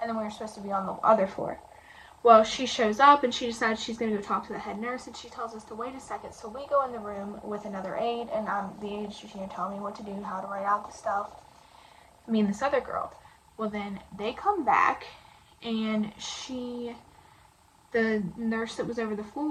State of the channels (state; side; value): identical; both; correlation 1.00